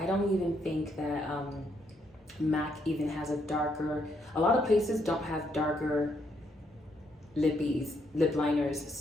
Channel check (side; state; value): both; normal; correlation 0.75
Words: don't even think that MAC even has a darker, a lot of places don't have darker lip liners,